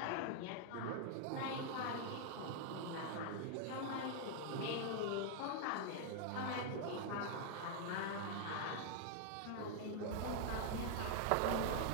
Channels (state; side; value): different; both; correlation 0.00